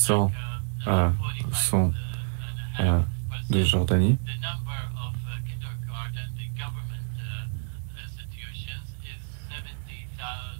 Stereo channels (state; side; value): silent; left; digital silence